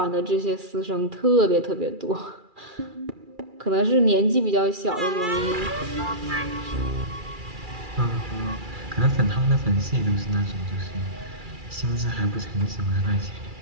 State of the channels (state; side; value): late; left; 2.4 ms